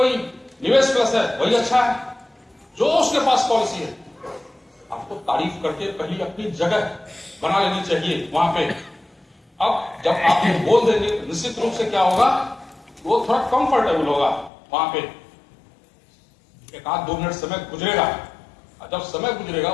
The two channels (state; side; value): drops out; right; at 14.5 s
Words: निवेश प्लस है वही अच्छा है, जो उसके पास पॉलिसी है। आपको तारीफ करके पहली अपनी जगह बना लेनी चाहिए वहां पे। अब जब आप ये बोल देंगे निश्चित रूप से क्या होगा, वो थोड़ा कंफर्टेबल होगा वहां पे। एक आध 2 मिनट समय गुजरेगा, जब समय गुजरेगा